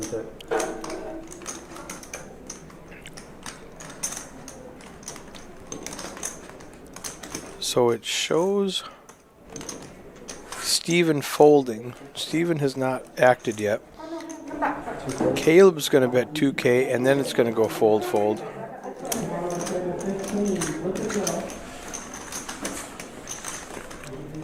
So it shows Steven folding. Steven has not acted yet. Caleb's going to bet 2K, and then it's going to go fold, fold.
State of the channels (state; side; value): identical; both; correlation 1.00